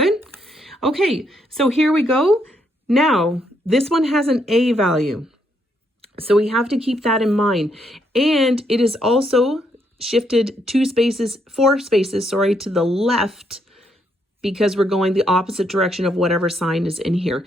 Okay, so here we go. Now, this one has an a value. So we have to keep that in mind. And it is also shifted 4 spaces, to the left, because we're going the opposite direction of whatever sign is in here.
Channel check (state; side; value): normal; both; correlation 0.75